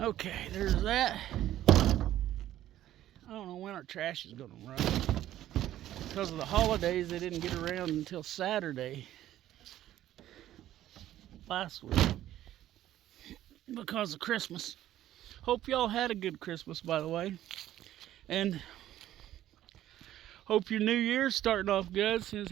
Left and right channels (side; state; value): left; quieter; 13.0 dB